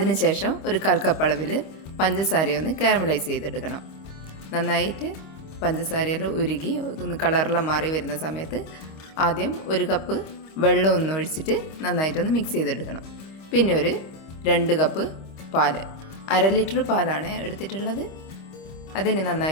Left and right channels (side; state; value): right; late; 25 ms